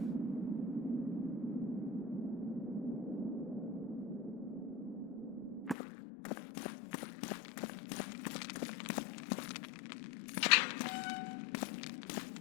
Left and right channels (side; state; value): right; drops out; at 5.8 s